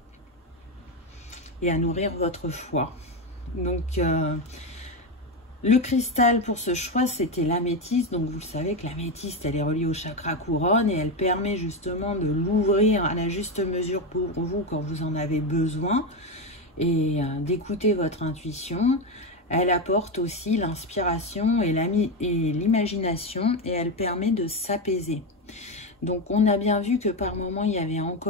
et à nourrir votre foi. Donc le cristal pour ce choix, c'était l'améthyste. Donc vous le savez que l'améthyste, elle est reliée au chakra couronne et elle permet justement de l'ouvrir à la juste mesure pour vous quand vous en avez besoin et d'écouter votre intuition. Elle apporte aussi l'inspiration et l'imagination et elle permet de s'apaiser. Donc on a bien vu que par moments il y avait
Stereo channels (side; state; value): both; normal; correlation 0.12